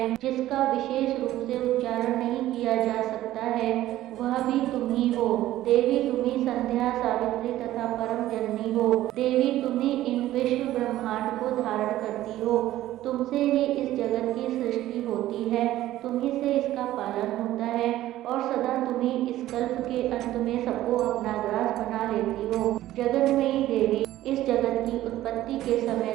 जिसका विशेष रूप से उच्चारण नहीं किया जा सकता है, वह भी तुम्ही हो। देवी, तुम्ही संध्या, सावित्री तथा परम जननी हो। देवी, तुम्ही इन विश्व ब्रह्मांड को धारण करती हो। तुमसे ही इस जगत की सृष्टि होती है, तुम्ही से इसका पालन होता है और सदा तुम्ही इस कल्प के अंत में सबको अपना ग्रास बना लेती हो। जगन्मयी देवी, इस जगत की उत्पत्ति के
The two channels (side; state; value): left; quieter; 14.5 dB